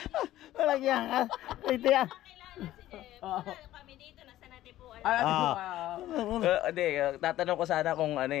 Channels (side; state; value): right; quieter; 14.3 dB